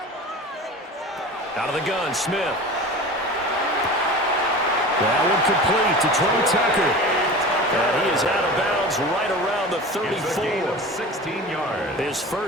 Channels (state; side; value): normal; both; correlation 0.35